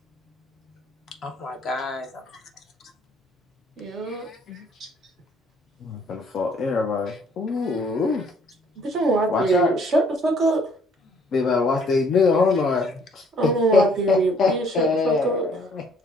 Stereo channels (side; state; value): both; normal; correlation 0.62